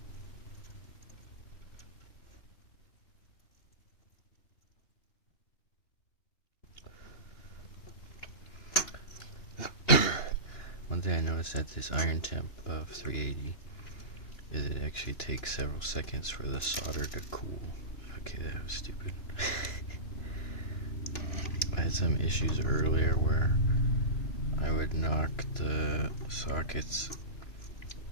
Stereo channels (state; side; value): late; right; 2.9 ms